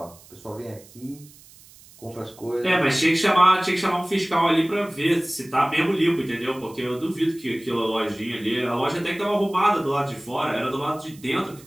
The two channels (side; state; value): right; noise; hiss, 23 dB below the sound